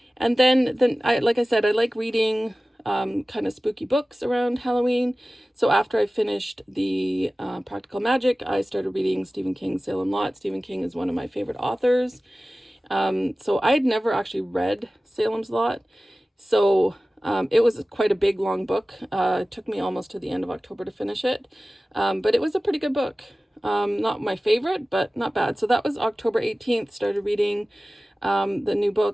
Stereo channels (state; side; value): normal; both; correlation 0.97